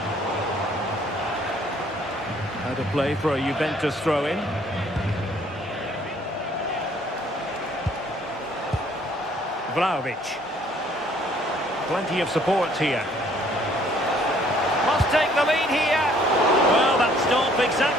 Out of play for a Juventus throw-in. Vlahovic. Plenty of support here. Must take the lead here. Well, that's not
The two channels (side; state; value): both; normal; correlation 0.60